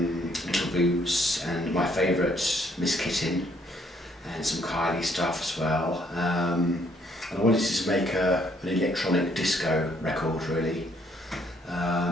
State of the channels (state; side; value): normal; both; correlation 0.67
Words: Little Boots and my favourite, Miss Kitten, and some Kylie stuff as well. And I wanted to make an electronic disco record really.